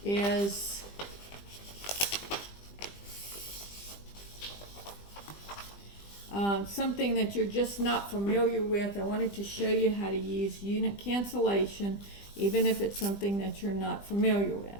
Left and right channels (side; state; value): right; late; 20 ms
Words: Is something that you're just not familiar with. I wanted to show you how to use unit cancellation, even if it's something that you're not familiar with.